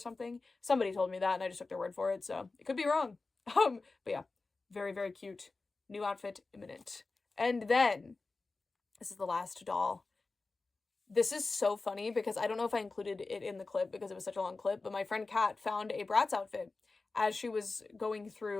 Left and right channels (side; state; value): right; quieter; 3.7 dB